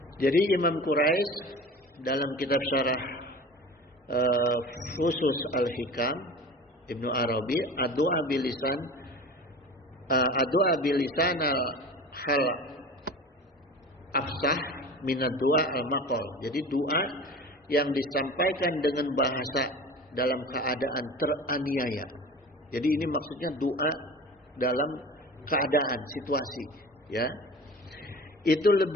Jadi Imam Quraisy dalam kitab syarah Fusus al-Hikam Ibnu Arabi, ad-du'a bilisan al-hal afsah minad du'a al-maqal. Jadi doa yang disampaikan dengan bahasa dalam keadaan teraniaya. Jadi ini maksudnya doa dalam keadaan situasi, ya. Itu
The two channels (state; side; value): normal; both; correlation 0.36